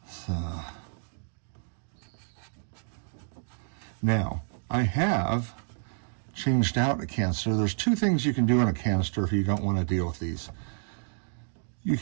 So, now, I have changed out a canister. There's 2 things you can do on a canister if you don't want to deal with these. You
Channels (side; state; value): left; silent; 55 dB below the other